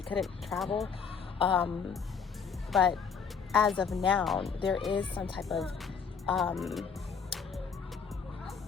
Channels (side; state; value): right; quieter; 6.2 dB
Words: couldn't travel. But as of now, there is some type of